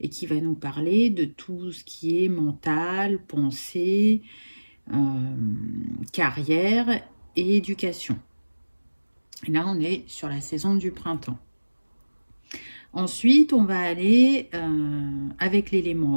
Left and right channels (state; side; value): inverted; both; correlation -1.00